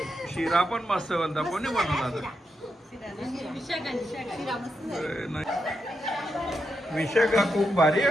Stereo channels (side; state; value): both; normal; correlation 0.85